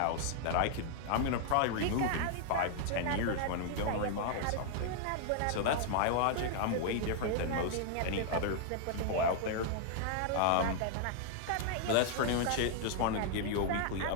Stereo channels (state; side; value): different; both; correlation -0.01